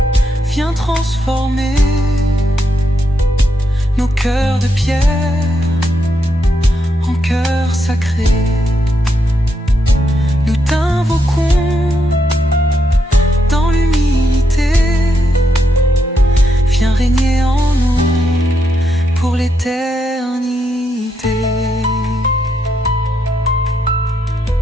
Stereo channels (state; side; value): normal; both; correlation 0.80